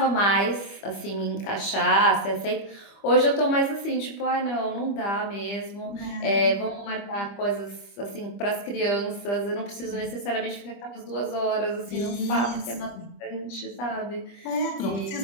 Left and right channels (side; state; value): right; late; 25 ms